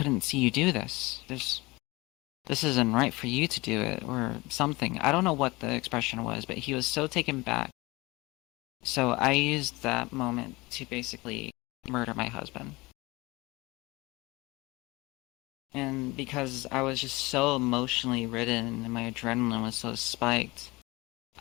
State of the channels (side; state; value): right; quieter; 22.7 dB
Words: see you do this. This isn't right for you to do it, or something. I don't know what the expression was, but he was so taken back. So I used that moment to basically murder my husband. And because I was just so emotionally ridden and my adrenaline was so spiked,